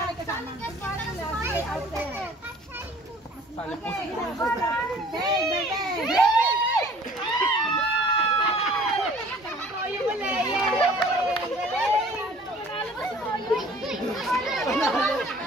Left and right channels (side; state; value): both; normal; correlation 0.51